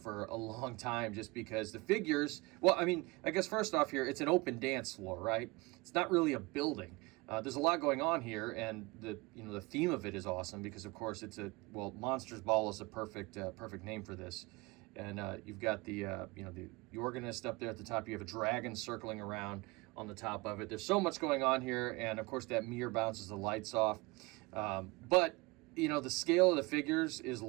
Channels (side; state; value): left; quieter; 24.4 dB